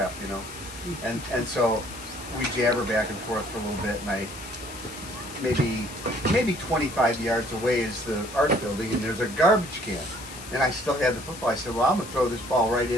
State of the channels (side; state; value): left; noise; hiss, 14 dB below the sound